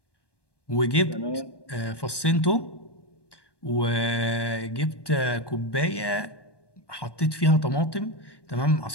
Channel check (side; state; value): right; late; 1.2 ms